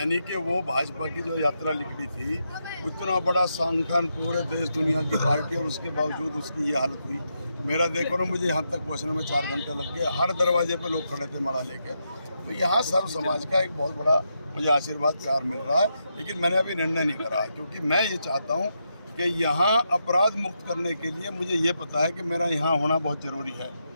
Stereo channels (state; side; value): inverted; both; correlation -0.83